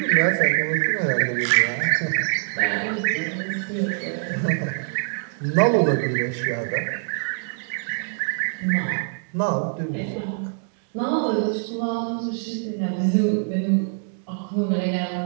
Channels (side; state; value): left; silent; 57 dB below the other